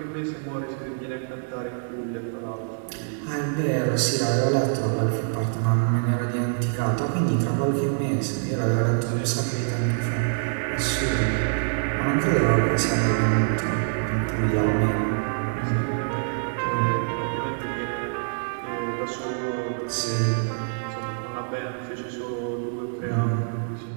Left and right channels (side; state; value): left; silent; digital silence